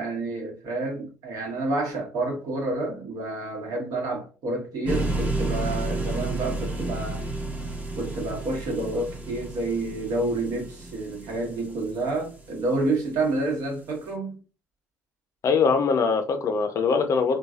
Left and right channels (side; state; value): both; normal; correlation 0.57